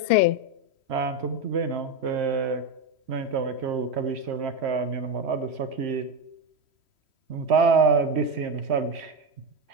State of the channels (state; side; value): late; left; 3.1 ms